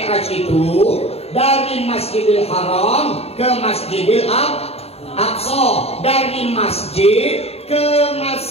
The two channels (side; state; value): right; late; 0.29 ms